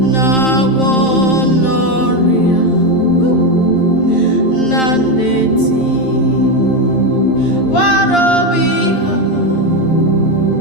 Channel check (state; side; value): late; right; 11 ms